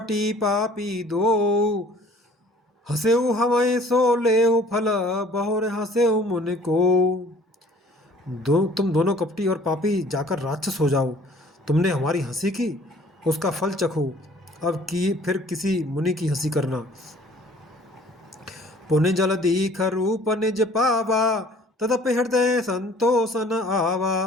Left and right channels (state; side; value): normal; both; correlation 0.53